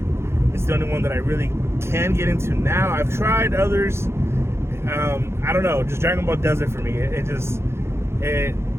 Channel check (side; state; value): left; late; 0.12 ms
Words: It's the only one that I really can get into now. I've tried others. I don't know, just Dragon Ball does it for me.